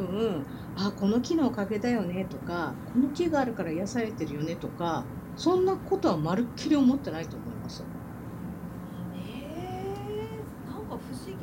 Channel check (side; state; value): both; identical; correlation 1.00